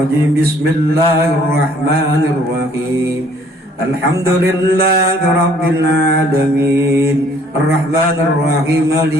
Bismillahirrahmanirrahim. Alhamdulillahi rabbil alamin. Arrahmanir rahim.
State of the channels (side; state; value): both; normal; correlation 0.60